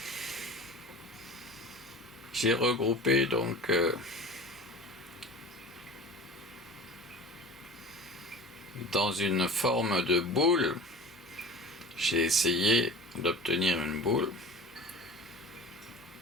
J'ai regroupé donc dans une forme de boule. J'ai essayé d'obtenir une boule.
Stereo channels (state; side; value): normal; both; correlation 0.37